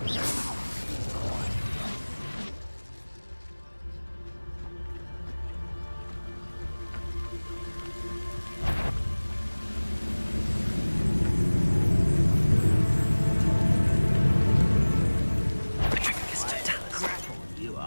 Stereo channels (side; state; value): both; inverted; correlation -1.00